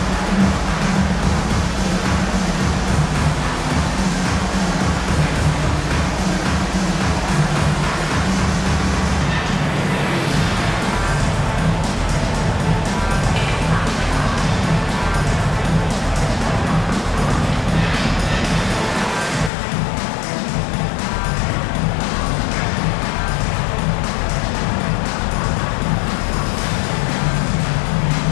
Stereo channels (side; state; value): right; drops out; at 19.5 s